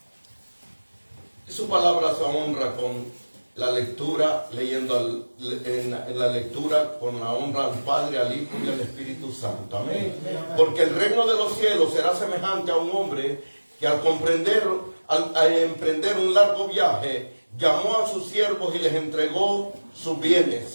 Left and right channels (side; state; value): both; inverted; correlation -1.00